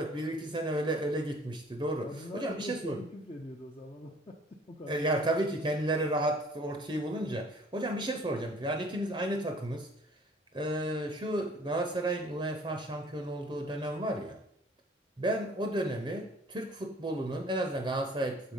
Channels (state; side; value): normal; both; correlation 0.54